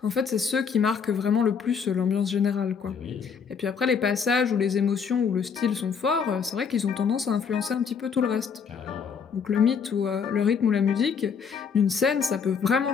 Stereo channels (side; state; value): right; quieter; 6.4 dB